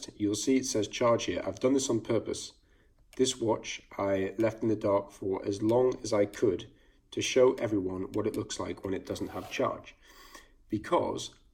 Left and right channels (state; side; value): identical; both; correlation 1.00